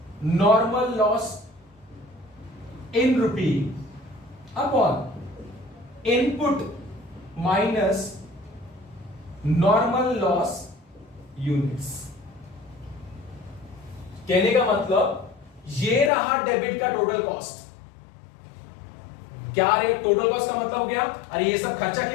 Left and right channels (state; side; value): drops out; right; at 16.1 s